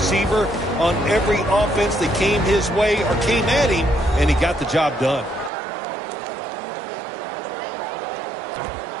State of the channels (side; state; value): left; drops out; at 5.5 s